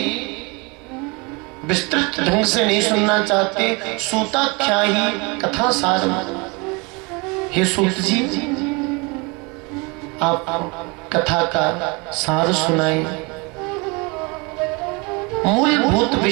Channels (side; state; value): left; quieter; 28.5 dB